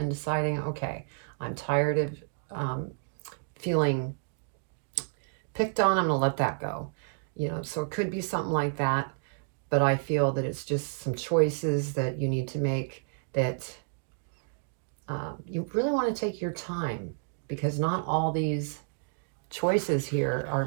deciding, okay, I'm tired of feeling picked on. I'm going to let that go. So it could be something like that. But I feel that it's just some choices that you need to make that you really want to take your time, because not all these choices here are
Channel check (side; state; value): left; silent; 58 dB below the other